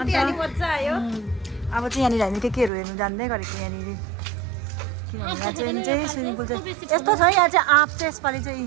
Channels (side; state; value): left; drops out; at 2.7 s